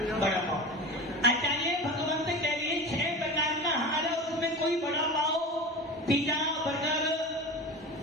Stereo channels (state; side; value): normal; both; correlation 0.30